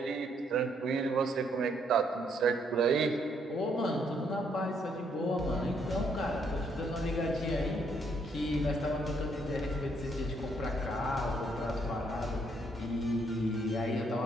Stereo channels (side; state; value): both; normal; correlation 0.71